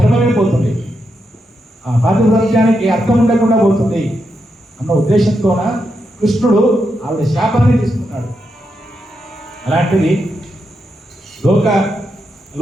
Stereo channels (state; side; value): normal; both; correlation 0.84